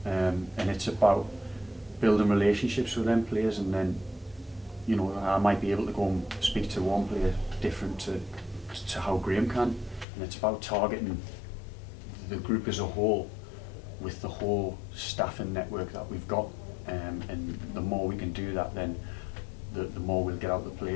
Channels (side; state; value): right; drops out; at 10.1 s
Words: And it's about building relationships with them players, and then, you know, I might be able to go and speak to one player different to how Graeme can, and it's about targeting the group as a whole with the whole staff and network that we've got, and the more we can do that, then the more we'll get out the